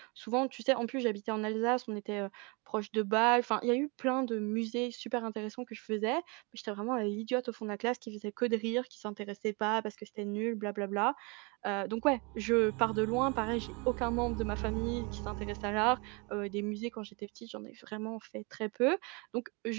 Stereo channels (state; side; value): quieter; left; 30.4 dB